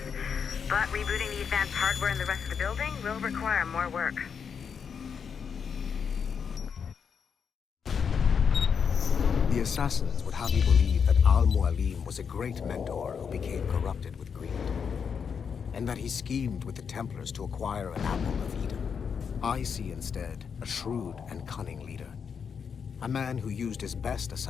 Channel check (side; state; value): right; quieter; 6.6 dB